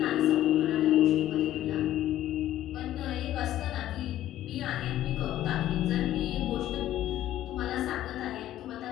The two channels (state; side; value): quieter; right; 13.1 dB